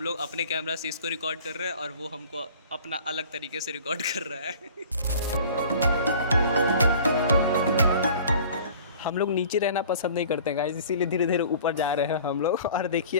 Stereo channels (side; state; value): both; inverted; correlation -0.47